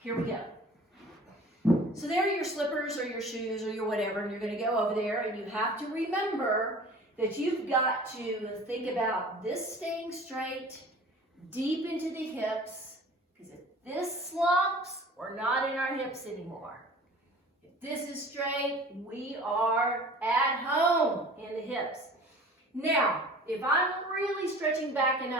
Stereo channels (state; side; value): normal; both; correlation 0.44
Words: we go. So there are your slippers or your shoes or your whatever, and you're going to go over there, and you have to remember that you've got to think about this staying straight, deep into the hips, because if this slumps, we're not in our hips anymore. If this is straight, we are at home in the hips. Now, if I'm really stretching back and